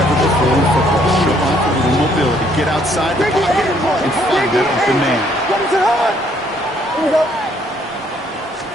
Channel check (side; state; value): both; normal; correlation 0.66